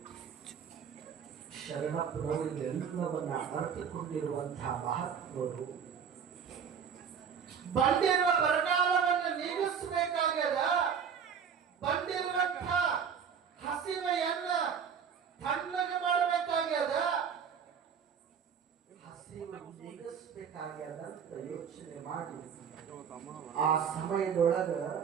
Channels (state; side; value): quieter; left; 7.1 dB